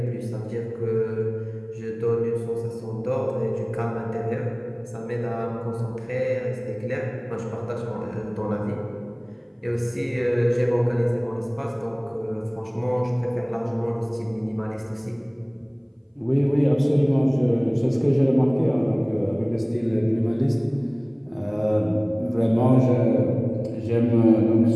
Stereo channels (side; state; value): both; identical; correlation 1.00